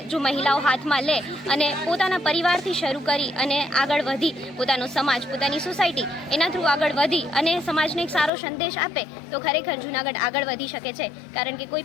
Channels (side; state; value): right; drops out; at 8.3 s